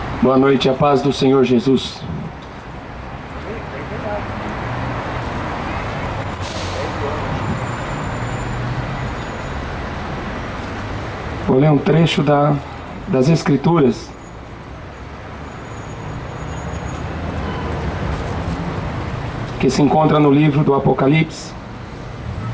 Boa noite, a paz do Senhor Jesus. Vou ler um trecho das Escrituras. Que se encontra no livro do Apocalipse,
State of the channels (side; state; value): both; identical; correlation 1.00